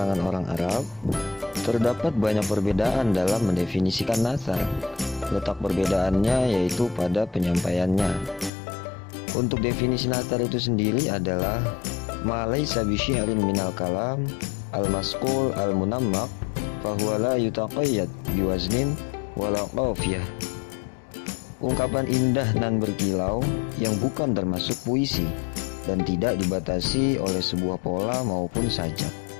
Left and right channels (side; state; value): right; drops out; at 8.5 s